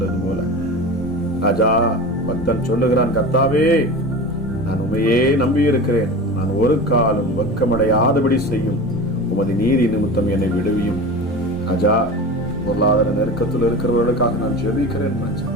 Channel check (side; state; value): left; noise; rumble, 24 dB below the sound